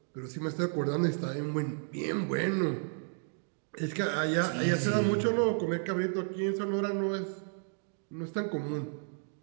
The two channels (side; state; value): left; silent; 56 dB below the other